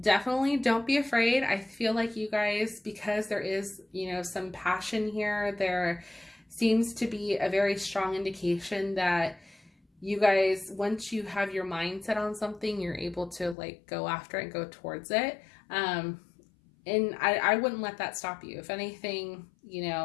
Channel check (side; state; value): right; drops out; at 13.6 s